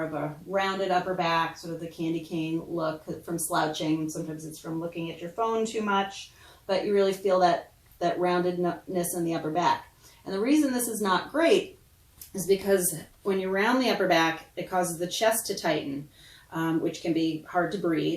of a rounded upper back, sort of the candy cane look from slouching. Sometimes it's from looking at your phone too much, but you really feel that roundedness in the upper back. And the reason this is not great is because when you round the upper back, it causes the chest to tighten, which can be hard to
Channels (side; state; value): both; identical; correlation 1.00